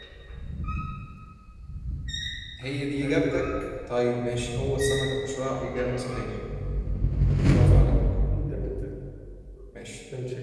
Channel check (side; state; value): both; identical; correlation 1.00